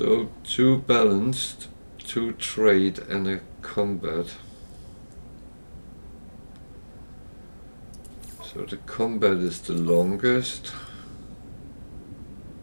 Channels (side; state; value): both; inverted; correlation -1.00